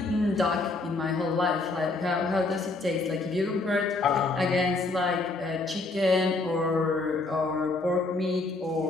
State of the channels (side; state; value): right; quieter; 3.4 dB